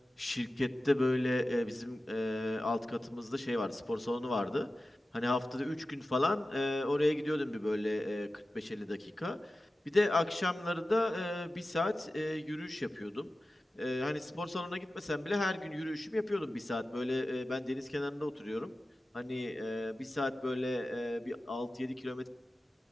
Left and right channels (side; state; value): both; normal; correlation 0.95